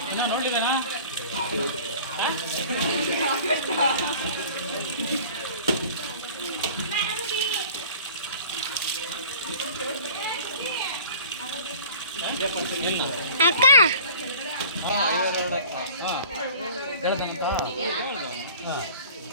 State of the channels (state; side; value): inverted; both; correlation -0.45